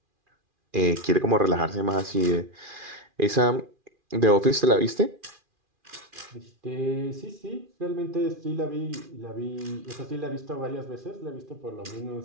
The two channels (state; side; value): late; left; 2.4 ms